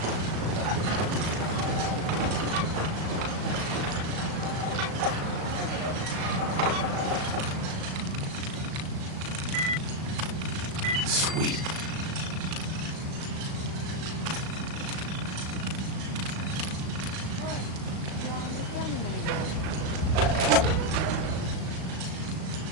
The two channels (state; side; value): late; left; 37 ms